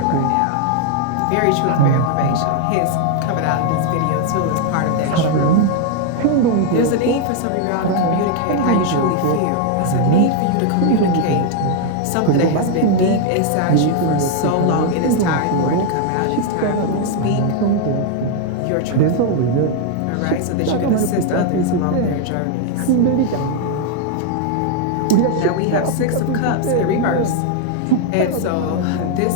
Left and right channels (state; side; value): different; both; correlation 0.00